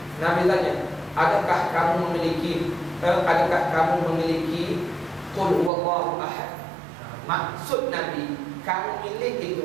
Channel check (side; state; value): left; drops out; at 5.7 s